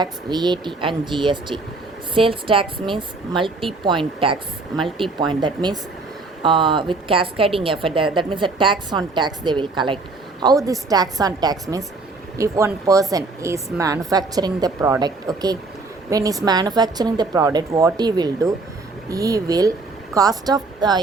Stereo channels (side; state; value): left; quieter; 3.6 dB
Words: VAT and GST. Sales tax means multi-point tax, multi-point, that means with cascading effect, that means a tax on tax they will collect. How this tax on tax means, if one person is manufacturing the product, okay, when he's manufacturing the product, what he will do, he will cost of